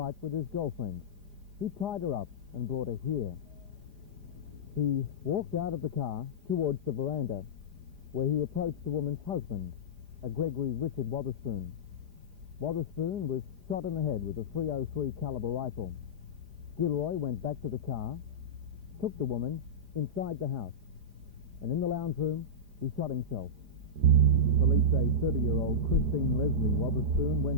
with his girlfriend. He tied her up and brought her here. He walked out of the car towards the veranda, where he approached the woman's husband, a Gregory Richard Wotherspoon. Wotherspoon was shot in the head with a .303 caliber rifle. Gilroy went back to the car, took the woman inside the house, and in the lounge room, he shot himself. Police say 30-year-old Christine Leslie Wotherspoon went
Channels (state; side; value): late; left; 4.9 ms